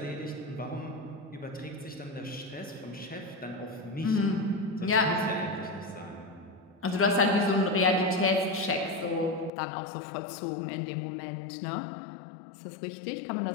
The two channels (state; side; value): drops out; right; at 9.5 s